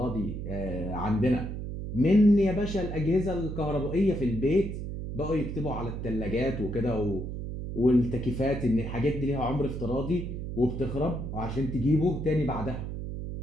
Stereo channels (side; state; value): right; noise; hum, 6 dB below the sound